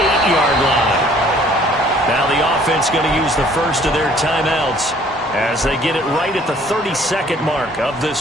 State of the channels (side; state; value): both; normal; correlation 0.57